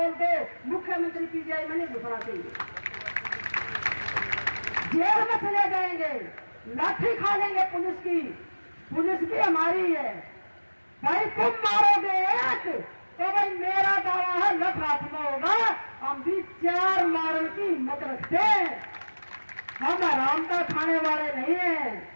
दो, मुख्यमंत्री पीजीआई में नहीं घुसना चाहिए। जेल में चले जाएंगे, लाठी खा लेंगे पुलिस की। पुलिस भी हमारी है भाई। तुम मारोगे एक तो भाई मेरा दावा है लख हाथ में होगा। हम भी 4 मारने की हिम्मत रखते हैं। हम आराम का खाने वाले नहीं हैं।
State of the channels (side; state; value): both; inverted; correlation -1.00